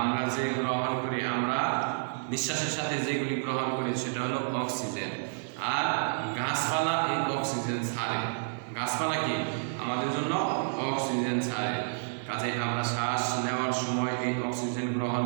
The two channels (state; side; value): silent; left; digital silence